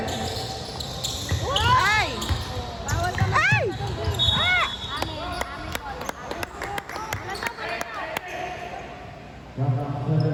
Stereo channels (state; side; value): identical; both; correlation 1.00